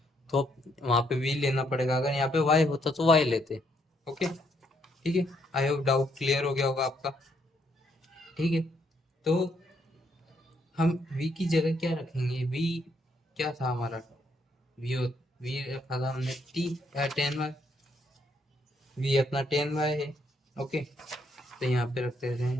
तो वहाँ पे v लेना पड़ेगा, अगर यहाँ पे y होता तो y लेते। ओके, ठीक है, आई होप डाउट क्लियर हो गया होगा आपका। ठीक है, तो हम v की जगह क्या रखेंगे, v क्या था हमारा, v रखा था हमने 10y, v अपना 10y है। ओके, तो यहाँ पे रखते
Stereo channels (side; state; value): both; normal; correlation 0.72